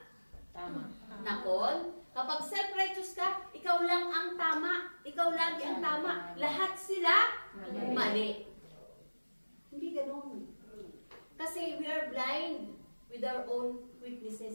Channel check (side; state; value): both; inverted; correlation -1.00